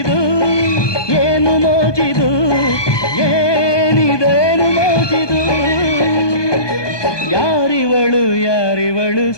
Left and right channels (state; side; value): late; right; 1.2 ms